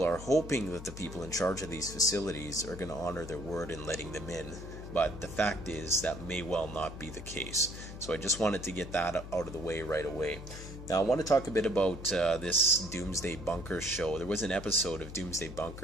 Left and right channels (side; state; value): left; noise; hum, 11 dB below the sound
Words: are hoping that the people in charge of these facilities are going to honor their word in letting them in, but the fact is that may well not be the case. So I just wanted to get that out of the way right away. Now I want to talk a bit about this Doomsday Bunkers show. There was an episode of Doomsday